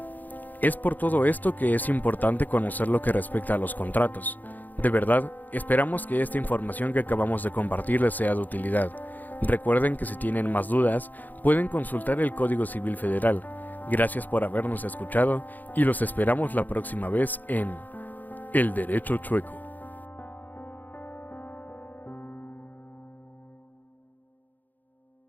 Es por todo esto que es importante conocer lo que respecta a los contratos. De verdad, esperamos que esta información que acabamos de compartir les sea de utilidad. Recuerden que si tienen más dudas, pueden consultar el Código Civil Federal. Gracias por habernos escuchado y los esperamos la próxima vez en El Derecho Chueco.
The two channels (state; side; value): late; right; 0.084 ms